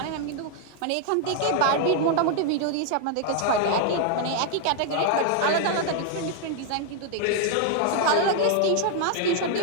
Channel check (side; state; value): both; different; correlation 0.00